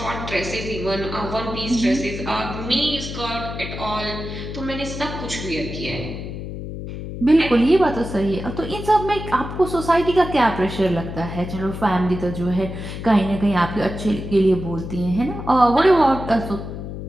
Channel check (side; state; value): left; noise; hum, 8 dB below the sound